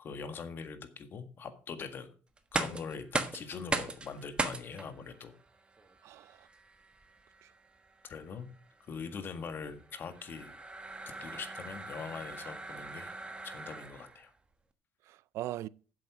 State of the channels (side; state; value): both; normal; correlation 0.51